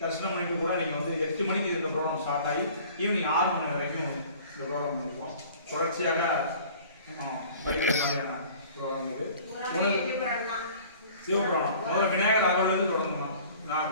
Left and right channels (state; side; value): inverted; both; correlation -0.48